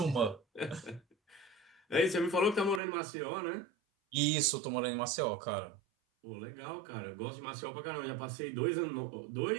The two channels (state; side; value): drops out; left; at 2.8 s